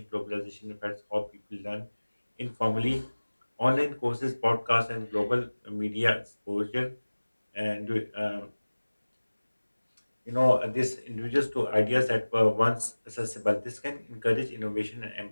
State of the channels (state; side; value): inverted; both; correlation -1.00